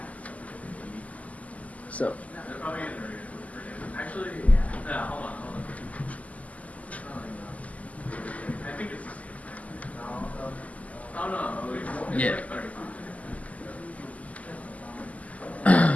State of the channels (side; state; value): right; late; 0.073 ms